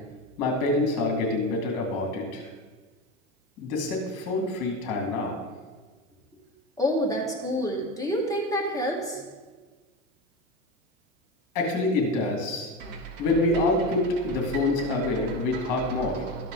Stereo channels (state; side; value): normal; both; correlation 0.22